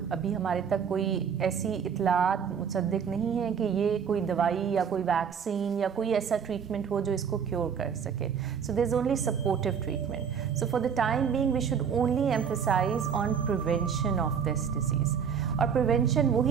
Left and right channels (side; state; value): left; quieter; 7.2 dB